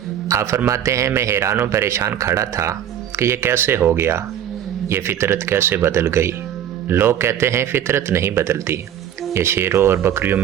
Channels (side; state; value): left; quieter; 10.1 dB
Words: آپ فرماتے ہیں، میں حیران و پریشان کھڑا تھا کہ یہ کیسے ہو گیا، یہ فطرت کیسے بدل گئی؟ لوگ کہتے ہیں فطرت نہیں بدلتی، یہ شیروں اور بکریوں